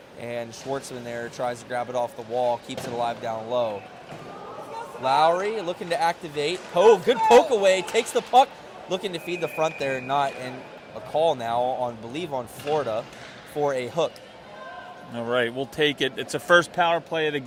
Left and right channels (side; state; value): both; identical; correlation 1.00